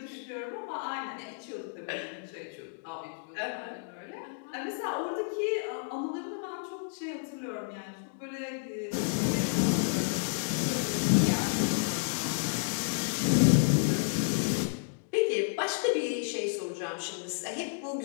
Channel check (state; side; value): silent; right; digital silence